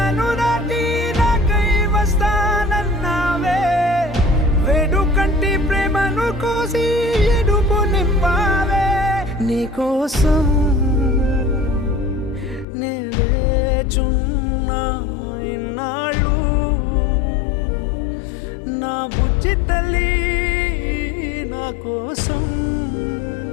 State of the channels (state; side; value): drops out; right; at 12.7 s